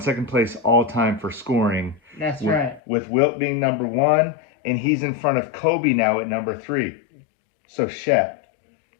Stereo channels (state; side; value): drops out; right; at 2.8 s